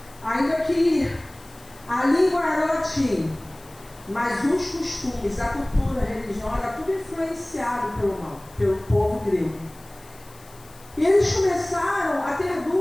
ainda que a língua era latim, mas os costumes, a cultura, a religião, era tudo influenciado pelo povo grego. E eles começaram a ter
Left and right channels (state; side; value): noise; left; hiss, 24 dB below the sound